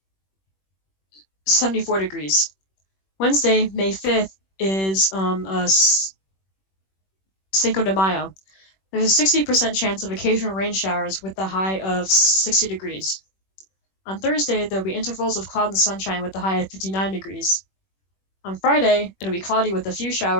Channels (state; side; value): late; right; 21 ms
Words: 74 degrees. Wednesday, May 5th, is Cinco de Mayo. There's a 60% chance of occasional rain showers with the high of 60 degrees. On Thursday, there'll be intervals of cloud and sunshine with the high of 59 degrees. On Friday, it'll be cloudy with a few